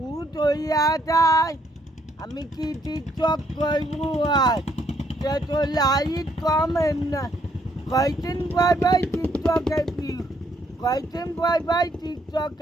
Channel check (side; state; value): both; normal; correlation 0.70